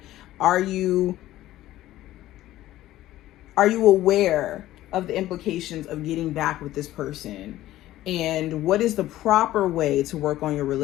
are you aware of the implications of getting back with this person? And what is the proper way to work on your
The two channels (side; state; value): right; quieter; 14.8 dB